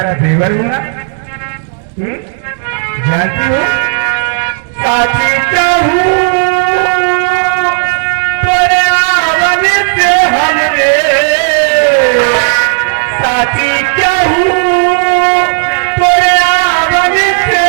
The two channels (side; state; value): left; silent; digital silence